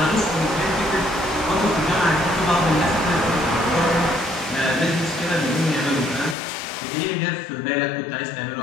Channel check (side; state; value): right; drops out; at 6.4 s